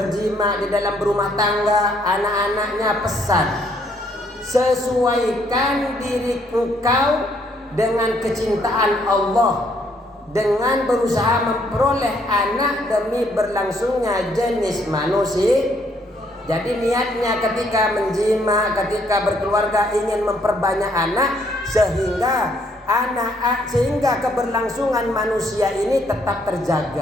di dalam berumah tangga, anak-anaknya pesan, sesuaikan diri engkau dengan kecintaan Allah, dengan berusaha memperoleh anak demi berlangsungnya jenis manusia. Jadi niatnya ketika menjima, ketika berkeluarga ingin memperbanyak anak sehingga keberlangsungan manusia ini tetap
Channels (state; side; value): normal; both; correlation 0.69